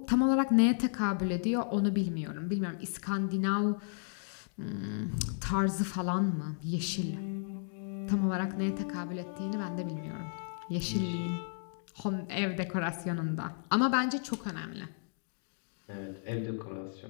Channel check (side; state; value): right; silent; digital silence